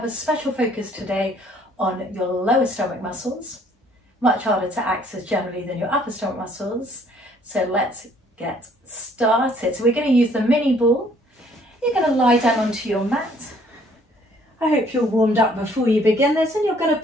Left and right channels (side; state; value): both; normal; correlation 0.61